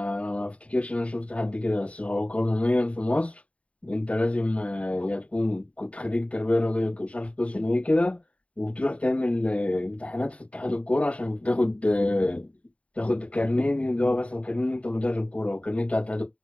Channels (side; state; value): right; late; 0.065 ms